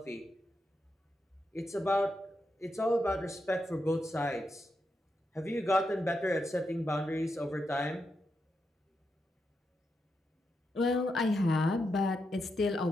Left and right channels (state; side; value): normal; both; correlation 0.85